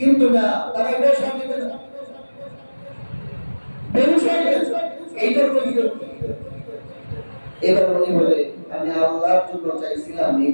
না, তারা এটা সাথে বেহুশ হয়ে গেছে, এইটার কৈফিয়ত কি? এবার উনি বলে, আমি আল্লাহর জন্য চাইছিলাম,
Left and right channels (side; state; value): both; inverted; correlation -1.00